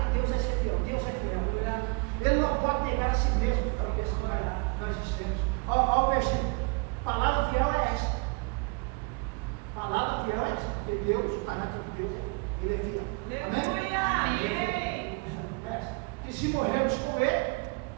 de Deus é ser fiel. Deus é fiel. Ele não pode negar a si mesmo para a questão de verdade. Nós dissemos. Olha o versículo. Palavra fiel é esta. Palavra fiel é esta. Porque Deus, o caráter de Deus, ele é fiel. Amém? E se morrermos com ele,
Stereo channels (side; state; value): left; quieter; 30.4 dB